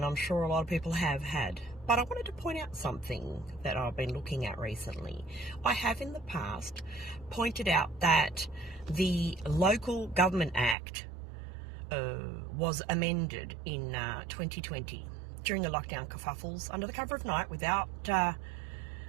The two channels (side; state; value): left; drops out; at 10.8 s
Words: I'm sure a lot of people have had. But I wanted to point out something that I've been looking at recently. I have in the past pointed out that the Local Government Act was amended in 2020 during the lockdown kerfuffles under the cover of night without